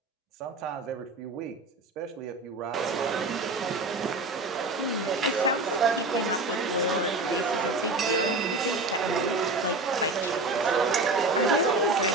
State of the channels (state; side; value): quieter; left; 3.1 dB